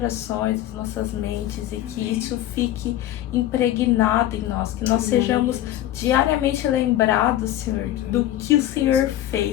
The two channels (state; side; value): quieter; right; 13.3 dB